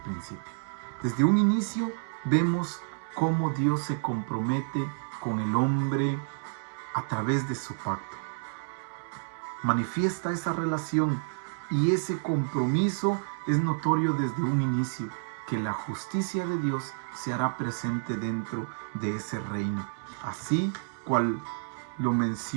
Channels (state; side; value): silent; left; 58 dB below the other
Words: Desde un inicio vemos cómo Dios se compromete con el hombre a través de su pacto. Manifiesta esa relación y ese compromiso es notorio desde un inicio, que la justicia de Dios se hará presente dentro de ese reino. Así cual lo